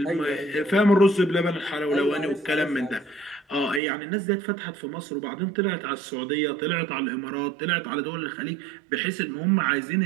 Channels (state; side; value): drops out; left; at 3.8 s